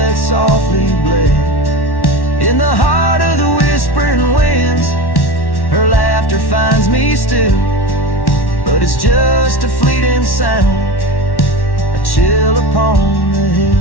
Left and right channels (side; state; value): right; late; 1.1 ms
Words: softly bled. In the heart of the whispering winds, her laughter finds me still, but it's just a fleeting sound, a chill upon the